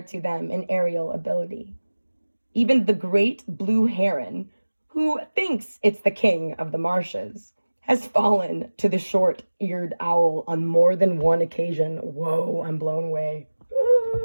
to them in aerial ability. Even the great blue heron, who thinks it's the king of the marshes, has fallen to the short-eared owl on more than one occasion. Whoa, I'm blown away.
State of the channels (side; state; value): both; inverted; correlation -1.00